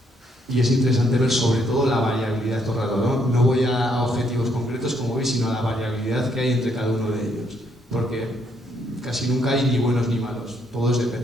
Y es interesante ver sobre todo la variabilidad todo el rato, ¿no? No voy a objetivos concretos, como veis, sino a la variabilidad que hay entre cada uno de ellos. Porque casi nunca hay ni buenos ni malos, todos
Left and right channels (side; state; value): both; normal; correlation 0.72